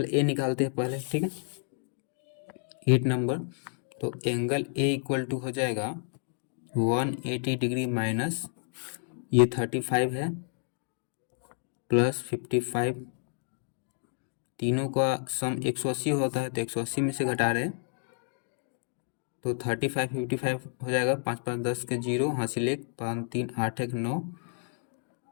ए निकालते हैं पहले। ठीक है, 8 नंबर, तो एंगल ए इक्वल टू हो जाएगा 180 डिग्री माइनस ये 35 है प्लस 55। तीनों का सम 180 होता है, तो 180 में से घटा रहे हैं तो 35 55 हो जाएगा। 5 5 10 के 0, हासिल 1, 5 3 8 1 9,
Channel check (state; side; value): silent; right; 58 dB below the other